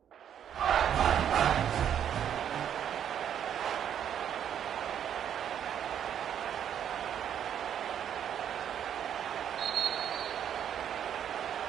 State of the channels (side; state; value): left; quieter; 9.3 dB